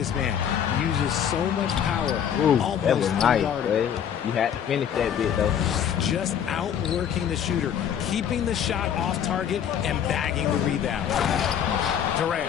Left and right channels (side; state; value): right; quieter; 8.9 dB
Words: man. Uses so much power. Ooh, almost that was nice, unguarded. boy. You had to finish that bit, though. Just outworking the shooter, keeping the shot off target, and bagging the rebound.